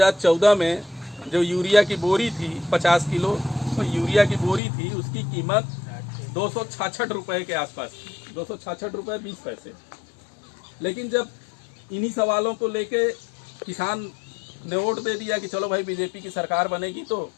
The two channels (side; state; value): right; drops out; at 4.6 s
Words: में जो यूरिया की बोरी थी 50 किलो तो यूरिया की बोरी थी, उसकी कीमत 266 रुपये के आसपास थी, 266 रुपये 20 पैसे। लेकिन जब इन्हीं सवालों को लेके किसान ने वोट दे दिया कि चलो भाई बीजेपी की सरकार बनेगी तो